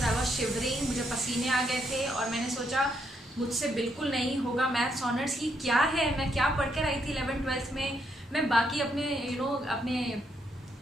I was shivering, मुझे पसीने आ गए थे और मैंने सोचा मुझसे बिल्कुल नहीं होगा। मैथ्स ऑनर्स की क्या है, मैं क्या पढ़ कर आई थी 11th-12th में। मैं बाकी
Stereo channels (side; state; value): both; normal; correlation 0.76